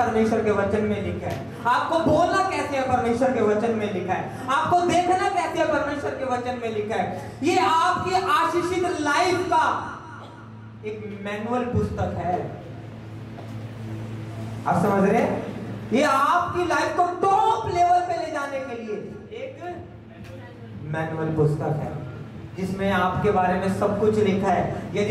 के वचन में लिखा है। आपको बोलना कैसे है? परमेश्वर के वचन में लिखा है। आपको देखना कैसे है? परमेश्वर के वचन में लिखा है। ये आपकी आशीषित लाइफ का एक मैनुअल पुस्तक है। आप समझ रहे हैं? ये आपकी लाइफ को टॉप लेवल पे ले जाने के लिए एक मैनुअल पुस्तक है, जिसमें आपके बारे में सब कुछ लिखा है।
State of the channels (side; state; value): both; identical; correlation 1.00